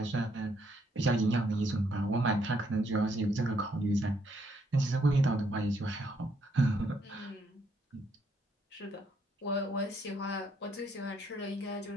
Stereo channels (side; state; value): both; normal; correlation 0.71